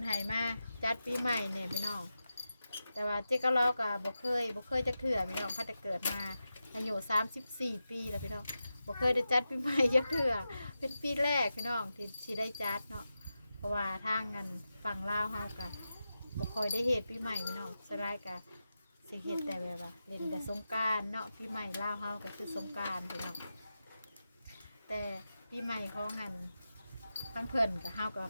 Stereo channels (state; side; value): inverted; both; correlation -0.91